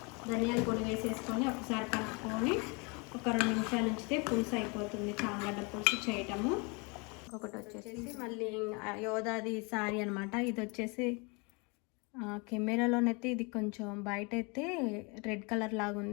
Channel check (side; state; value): right; quieter; 30.7 dB